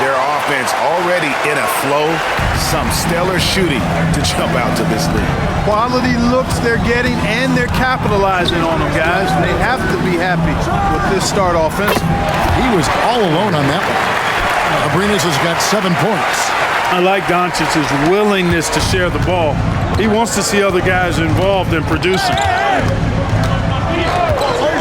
their offense already in a flow. Some stellar shooting to jump out to this lead. Quality looks they're getting, and they're capitalizing on them, guys. They have to be happy with this start offense. He was all alone on that one. Abrinas has got 7 points. I like Doncic's willingness to share the ball. He wants to see other guys involved in producing.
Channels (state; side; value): identical; both; correlation 1.00